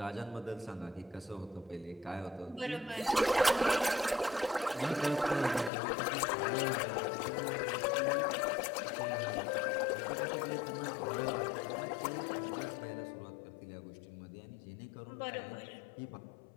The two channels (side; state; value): right; drops out; at 5.7 s